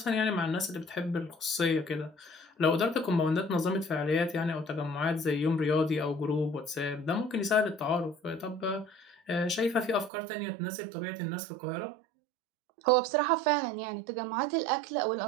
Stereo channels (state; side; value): drops out; left; at 10.1 s